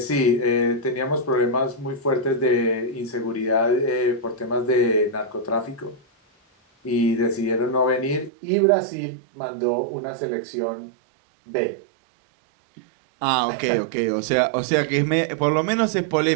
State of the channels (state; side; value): drops out; left; at 8.3 s